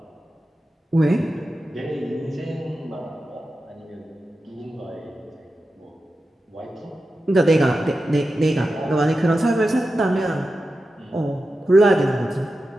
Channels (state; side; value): normal; both; correlation 0.92